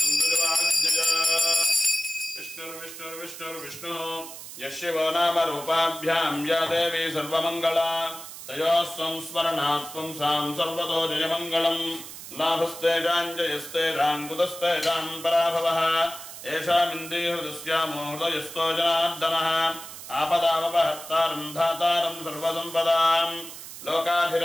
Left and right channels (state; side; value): noise; right; hiss, 12 dB below the sound